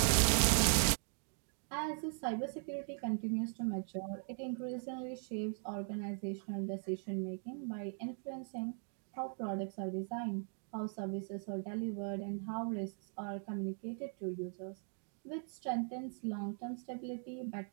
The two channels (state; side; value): silent; left; 51 dB below the other